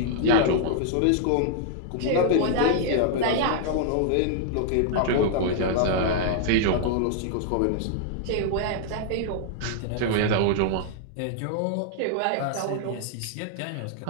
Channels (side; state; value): both; different; correlation -0.01